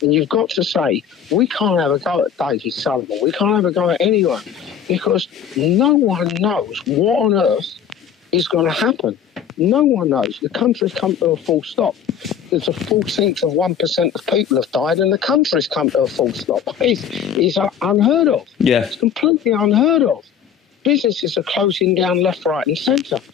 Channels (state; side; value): quieter; right; 8.2 dB